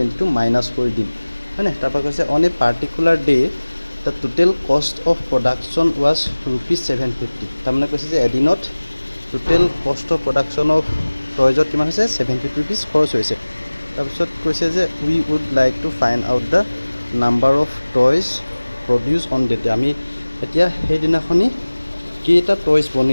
মাইনাস কৰি দিম হয়নে তাৰপা কৈছে on a particular day the total cost of production was rupees 750 তামনে কৈছে যে এদিনত total cost of production of টয়জত কিমান হৈছে 750 rupees খৰচ হৈছে তাৰপিছত কৈছে যে we would like to find out the number of toys produce on the day আমি এতিয়া সেই দিনাখনি কেইটা টয়স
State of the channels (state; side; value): inverted; both; correlation -1.00